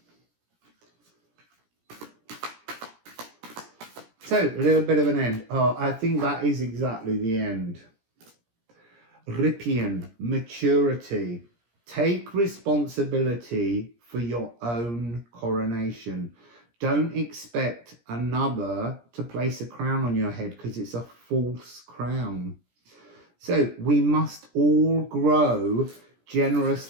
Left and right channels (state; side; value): late; left; 17 ms